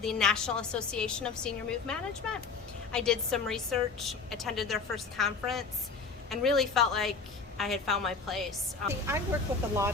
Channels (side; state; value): right; quieter; 4.7 dB